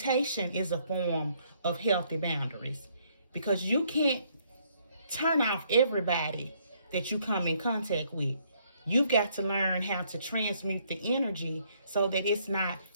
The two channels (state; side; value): inverted; both; correlation -0.68